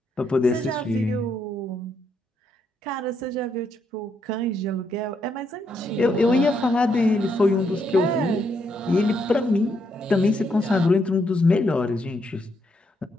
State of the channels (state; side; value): normal; both; correlation 0.77